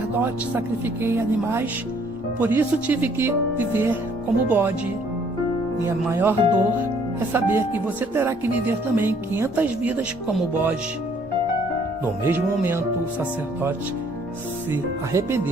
sacrifiquei animais, por isso tive que viver como bode. Minha maior dor é saber que você terá que viver também 500 vidas como bode." No mesmo momento, o sacerdote se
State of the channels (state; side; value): normal; both; correlation 0.62